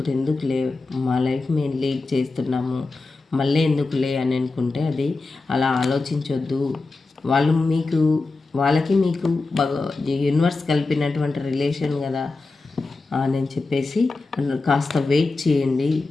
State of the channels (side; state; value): right; quieter; 3.6 dB